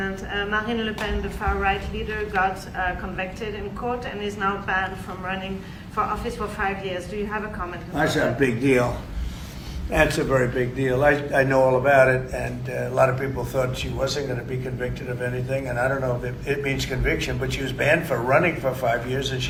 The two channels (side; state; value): both; identical; correlation 1.00